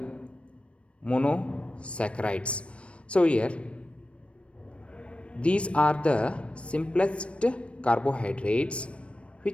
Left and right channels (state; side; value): late; right; 0.060 ms